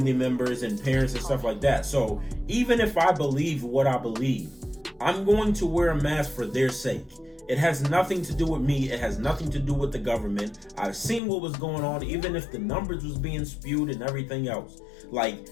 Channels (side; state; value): right; drops out; at 11.2 s